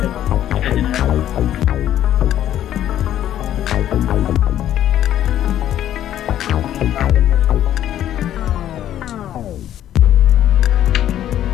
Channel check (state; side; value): quieter; right; 11.6 dB